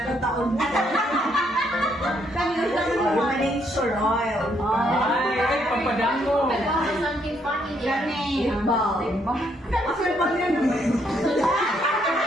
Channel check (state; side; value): normal; both; correlation 0.72